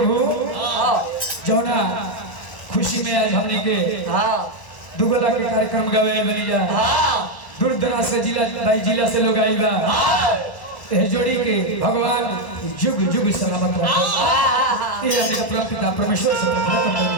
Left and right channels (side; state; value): right; late; 1.0 ms